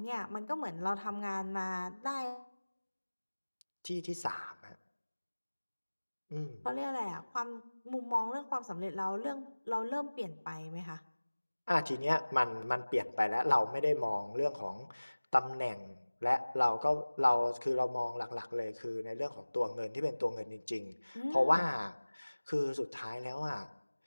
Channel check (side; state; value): both; inverted; correlation -1.00